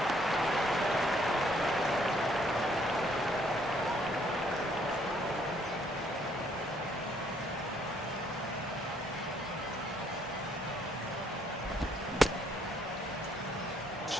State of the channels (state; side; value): normal; both; correlation 0.67